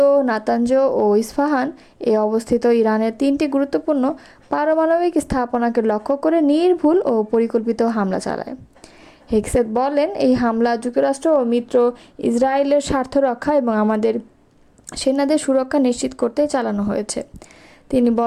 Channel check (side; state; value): both; identical; correlation 1.00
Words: নাতানজ ও ইস্পাহান এ অবস্থিত ইরানের 3টি গুরুত্বপূর্ণ পারমাণবিক স্থাপনাকে লক্ষ্য করে নির্ভুল ও পরিকল্পিত হামলা চালায়। হেগসেট বলেন, এই হামলা যুক্তরাষ্ট্র ও মিত্র ইসরায়েলের স্বার্থ রক্ষা এবং আমাদের সেনাদের সুরক্ষা নিশ্চিত করতে চালানো হয়েছে। তিনি